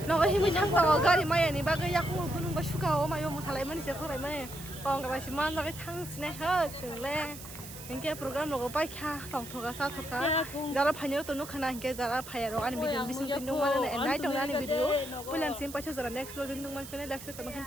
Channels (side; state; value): right; noise; hiss, 13 dB below the sound